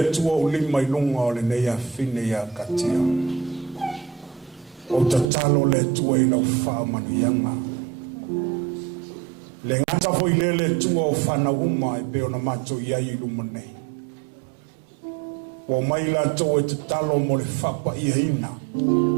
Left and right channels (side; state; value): left; drops out; at 5.3 s